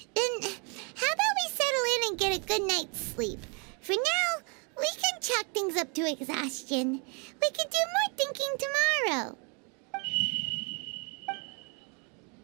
Then, how about we settle in and get a good night's sleep? For now, we can chalk things up to exhaustion. We can do more thinking tomorrow.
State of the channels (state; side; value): quieter; left; 35.1 dB